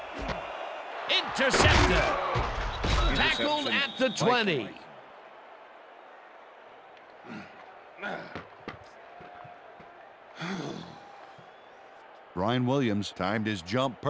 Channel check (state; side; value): identical; both; correlation 1.00